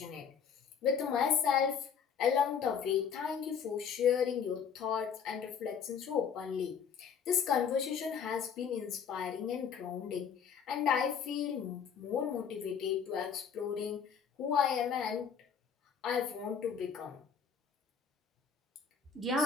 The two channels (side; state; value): right; quieter; 7.0 dB